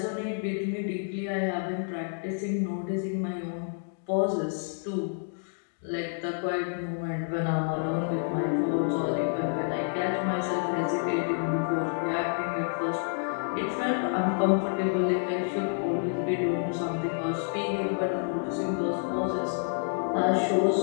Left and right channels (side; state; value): right; silent; 59 dB below the other